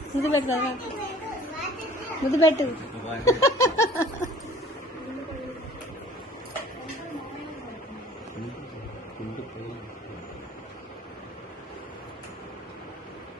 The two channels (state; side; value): normal; both; correlation 0.49